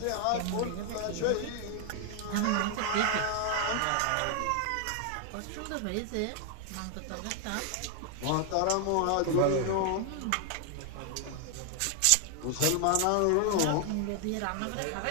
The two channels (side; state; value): both; different; correlation 0.00